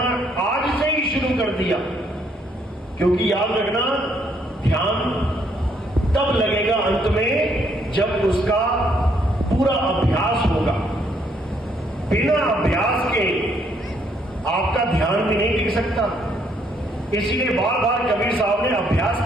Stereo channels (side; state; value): both; normal; correlation 0.70